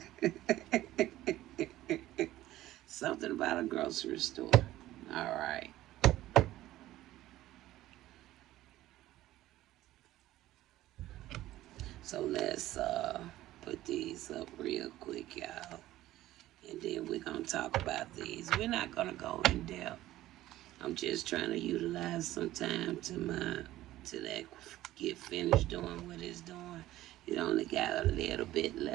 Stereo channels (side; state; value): left; quieter; 15.2 dB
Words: Something about a grocery store. All right. So let's put these up real quick, y'all. And then we're going to talk about these. We're not going to go in depth. I'm just trying to utilize some time to that get finished doing what it's doing. It only got a little bit